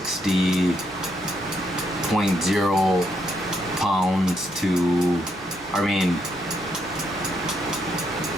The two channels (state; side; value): normal; both; correlation 0.76